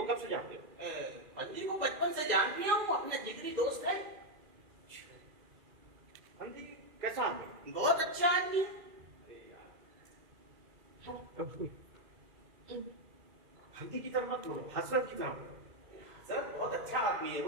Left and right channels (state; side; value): late; left; 2.3 ms